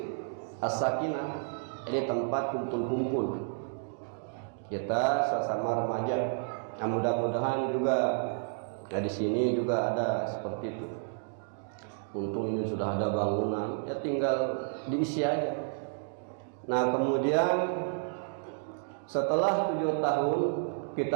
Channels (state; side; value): silent; left; digital silence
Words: As-Sakinah. Ini tempat kumpul-kumpul kita sesama remaja. Nah, mudah-mudahan juga di sini juga ada seperti itu. Untung ini sudah ada bangunan, ya tinggal diisi aja. Nah, kemudian setelah 7 tahun